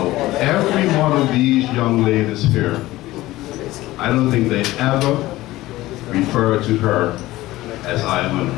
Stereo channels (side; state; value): right; quieter; 17.3 dB